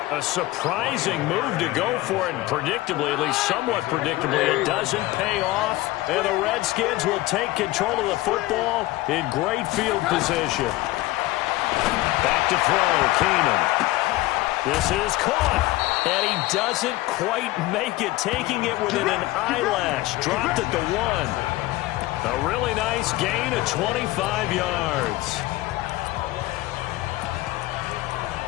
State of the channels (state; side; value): quieter; right; 18.4 dB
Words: A surprising move to go for it, and predictably, at least somewhat predictably, it doesn't pay off. And the Redskins will take control of the football in great field position. Back to throw, Keenum. This is caught. And he doesn't quite make it, taking it within an eyelash. Dropped at the 1. A really nice gain of 25 yards.